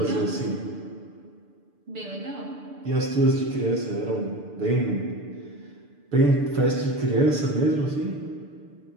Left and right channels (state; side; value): late; left; 6.8 ms